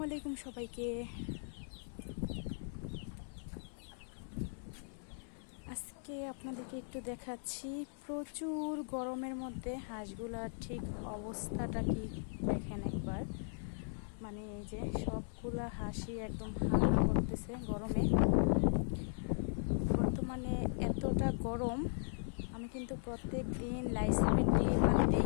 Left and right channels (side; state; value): right; silent; 52 dB below the other